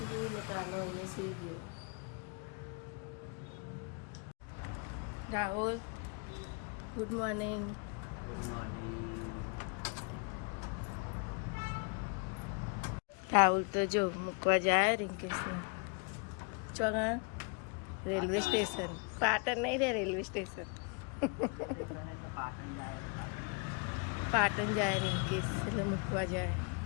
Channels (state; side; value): quieter; right; 35.8 dB